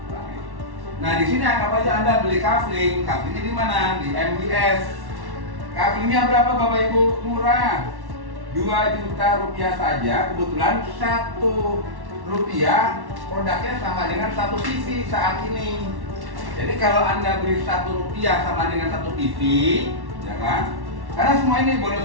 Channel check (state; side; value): late; left; 1.1 ms